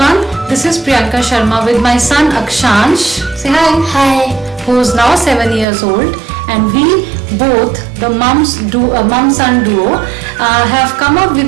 this is Priyanka Sharma with my son Akshansh. Say hi. Hi. Who is now 7 years old, and we both, the mum-son duo, have come up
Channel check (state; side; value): drops out; left; at 5.7 s